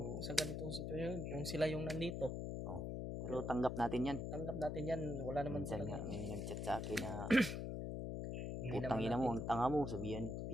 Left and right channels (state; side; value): noise; left; hum, 3 dB below the sound